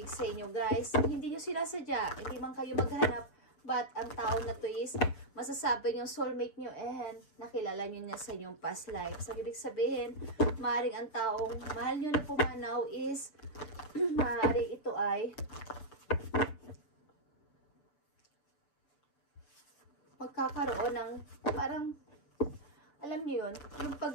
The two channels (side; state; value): right; late; 6.8 ms